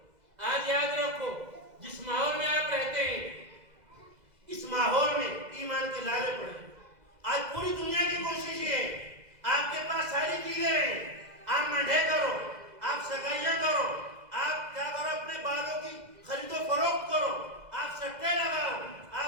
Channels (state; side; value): late; left; 2.0 ms